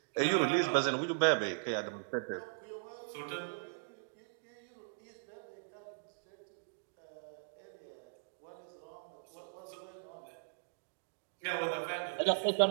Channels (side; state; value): left; silent; digital silence